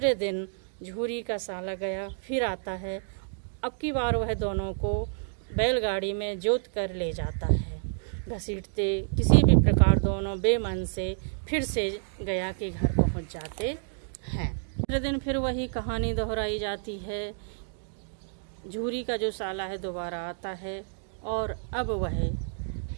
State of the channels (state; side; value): silent; left; digital silence